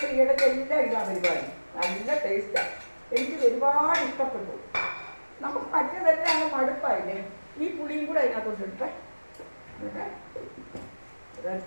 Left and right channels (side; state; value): both; inverted; correlation -1.00